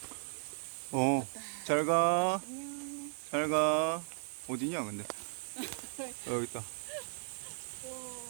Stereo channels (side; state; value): left; silent; digital silence